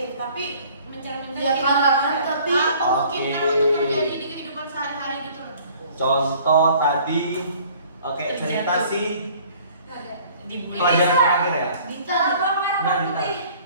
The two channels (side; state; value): both; inverted; correlation -0.53